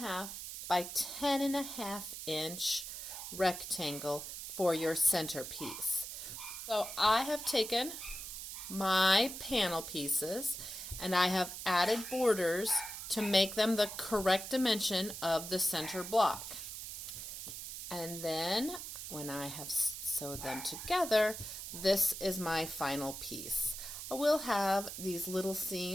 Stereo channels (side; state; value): right; noise; hiss, 8 dB below the sound